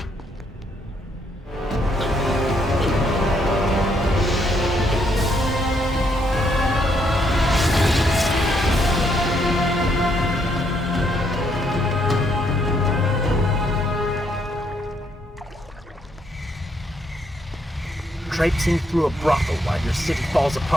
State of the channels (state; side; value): normal; both; correlation 0.73